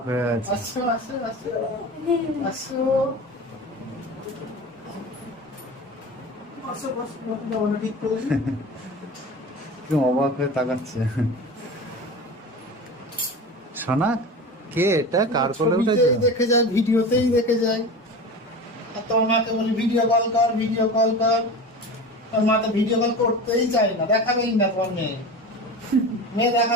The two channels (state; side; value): normal; both; correlation 0.31